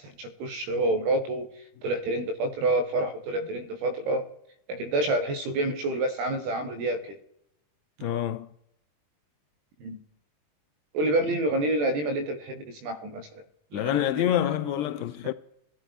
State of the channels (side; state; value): left; late; 20 ms